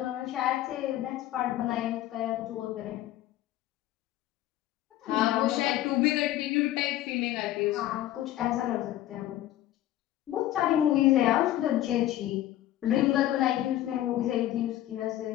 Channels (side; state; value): right; quieter; 13.8 dB